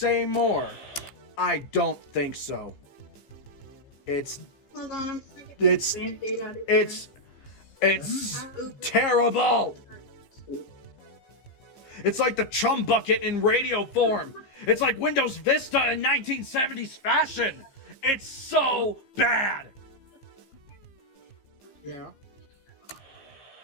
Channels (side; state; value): right; late; 15 ms